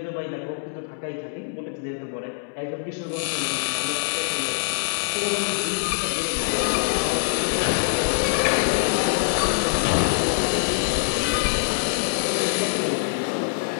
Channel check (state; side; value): silent; right; digital silence